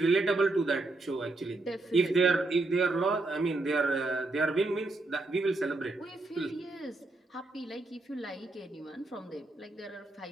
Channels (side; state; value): left; quieter; 3.0 dB